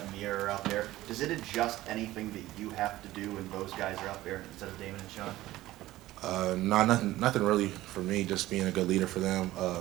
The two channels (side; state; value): left; quieter; 16.3 dB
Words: Amir are out there, does it adjust anything that you have to do when those guys are out there instead of Damon and Sean? Nothing really for me. Just being a good leader for them.